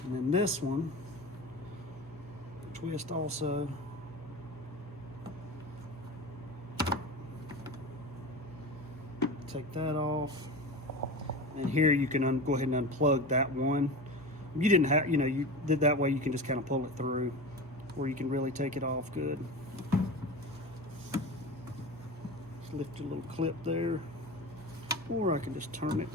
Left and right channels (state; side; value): noise; left; hum, 22 dB below the sound